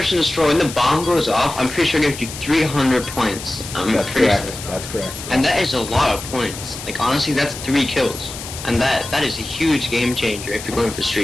and Destroy, when the bomb goes off, I'm pretty sure it gives you 300 points. I'm pretty sure. That's correct. And that is a lot of points. Like, honestly, that's 3 kills. And that is a huge game changer if you're going for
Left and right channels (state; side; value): noise; left; hiss, 11 dB below the sound